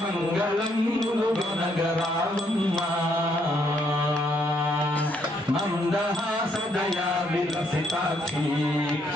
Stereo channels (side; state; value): both; normal; correlation 0.71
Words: మంగళం ములుగొనగరావమ్మా మందహాసదయా విలసితాక్షి